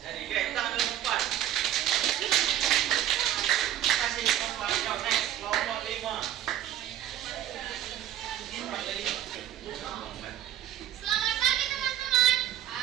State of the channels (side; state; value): left; quieter; 11.8 dB